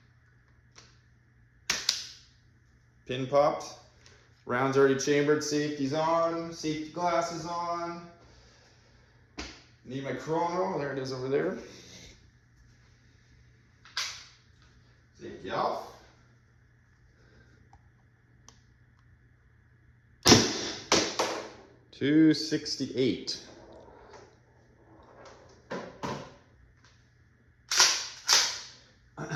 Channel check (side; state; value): both; identical; correlation 1.00